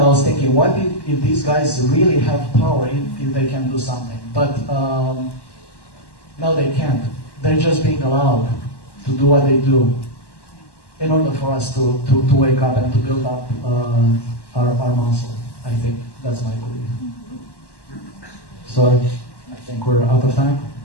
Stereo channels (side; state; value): right; late; 1.1 ms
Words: was thinking, what if these guys really have power, if they can do something? But no, they can't. They're just being allowed to do what they do in order for us to wake up and to build up our muscle. I think that's my belief. So I think we're out of time.